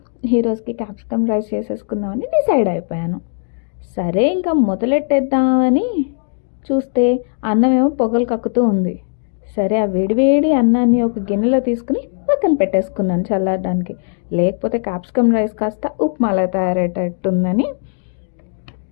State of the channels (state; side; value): silent; right; digital silence